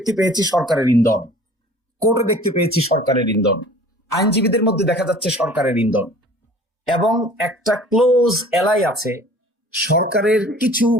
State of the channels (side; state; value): both; normal; correlation 0.48